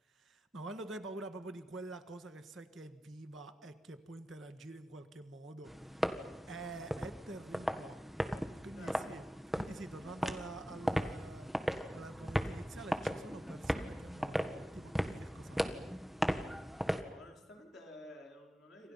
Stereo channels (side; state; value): both; normal; correlation 0.93